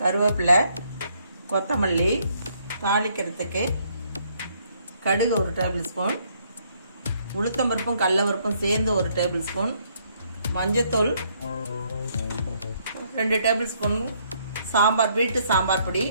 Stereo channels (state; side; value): inverted; both; correlation -0.69